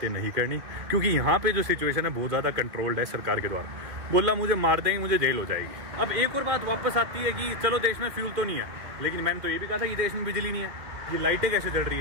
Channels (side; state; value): left; late; 2.1 ms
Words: नहीं करनी, क्योंकि यहाँ पे जो सिचुएशन है बहुत ज़्यादा कंट्रोल्ड है सरकार के द्वारा। बोला मुझे मार देंगे, मुझे जेल हो जाएगी। अब एक और बात वापस आती है कि चलो देश में फ्यूल तो नहीं है, लेकिन मैंने तो ये भी कहा था कि देश में बिजली नहीं है, ये लाइटें कैसे जल रही